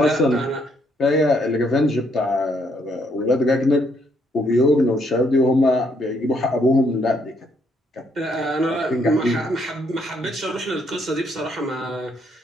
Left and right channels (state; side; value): normal; both; correlation 0.71